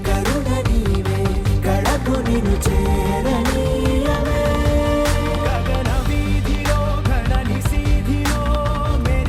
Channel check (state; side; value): identical; both; correlation 1.00